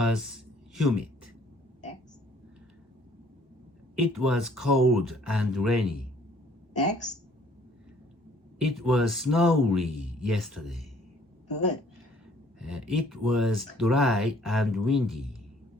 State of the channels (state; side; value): normal; both; correlation 0.59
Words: humid. Next. It was cold and rainy. Next. It was snowy yesterday. Good. It was dry and windy.